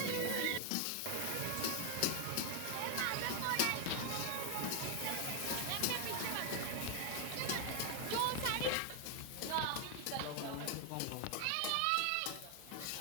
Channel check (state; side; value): different; both; correlation 0.01